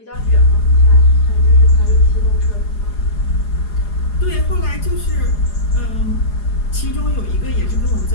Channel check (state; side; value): late; right; 4.8 ms